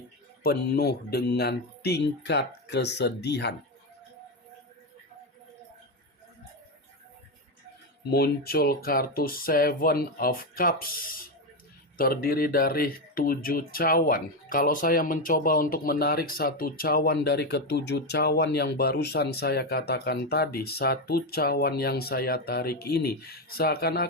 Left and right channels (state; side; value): normal; both; correlation 0.10